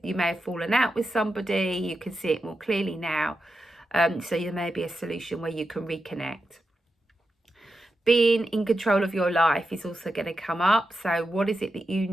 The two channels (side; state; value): both; normal; correlation 0.89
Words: you may have fallen out with somebody, you can see it more clearly now. So there may be a solution where you can reconnect. Being in control of your life is also going to come up. So what is it that you